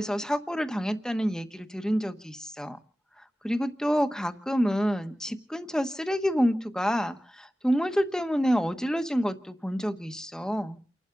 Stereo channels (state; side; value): normal; both; correlation 0.95